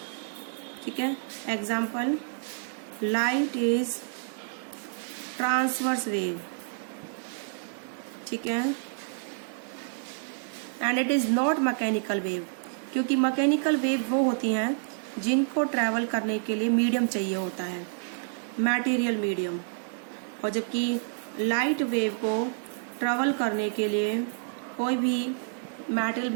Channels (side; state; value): left; silent; digital silence